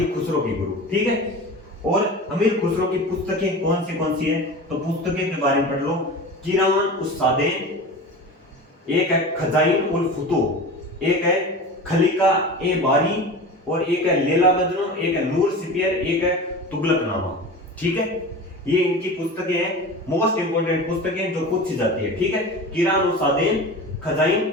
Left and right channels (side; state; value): both; normal; correlation 0.32